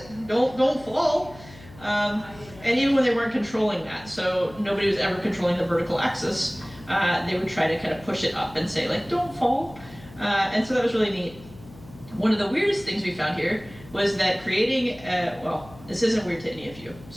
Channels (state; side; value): noise; left; hum, 20 dB below the sound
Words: don't fall. And even when they weren't controlling that, so nobody was ever controlling the vertical axis, they would try to kind of push it up and say, like, don't fall. And so that was really neat. One of the weirdest things we found here was that creating, well, this isn't weird to any of you.